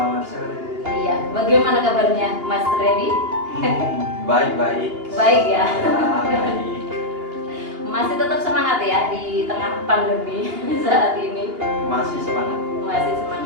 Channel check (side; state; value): left; late; 2.8 ms